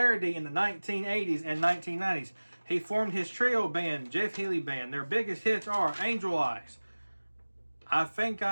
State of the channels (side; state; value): both; inverted; correlation -1.00